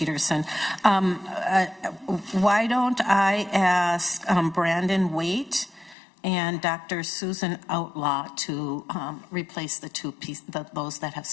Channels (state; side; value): drops out; right; at 6.0 s